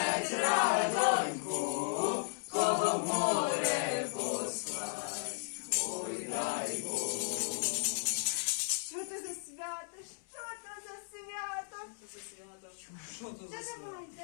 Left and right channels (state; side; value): silent; right; 54 dB below the other